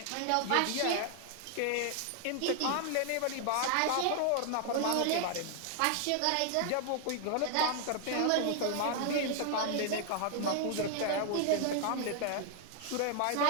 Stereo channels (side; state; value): both; different; correlation 0.00